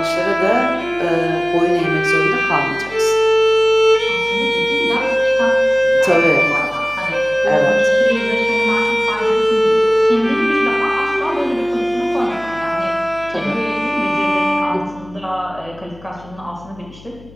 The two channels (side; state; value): left; noise; hum, 21 dB below the sound